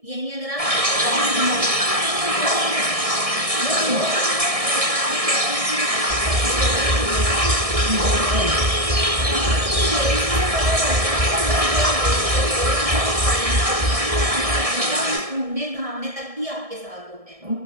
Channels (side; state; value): left; late; 1.6 ms